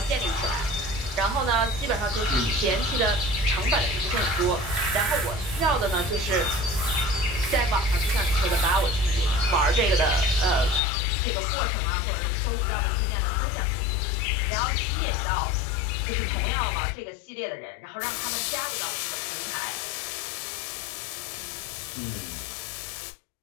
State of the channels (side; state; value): right; drops out; at 10.8 s